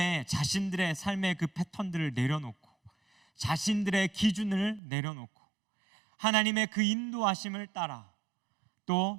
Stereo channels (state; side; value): drops out; left; at 4.8 s